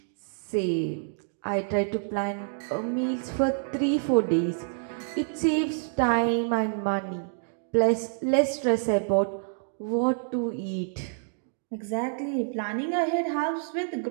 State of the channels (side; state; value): left; silent; digital silence